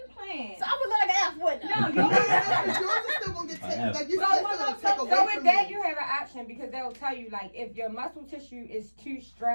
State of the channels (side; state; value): both; inverted; correlation -1.00